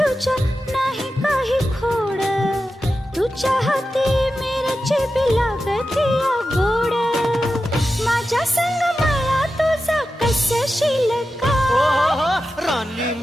नाही काही खोड, तुझ्या हाती मिरची बी लागती गोड. माझ्या संग मला तुझा कसशील का? राणी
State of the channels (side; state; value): both; normal; correlation 0.92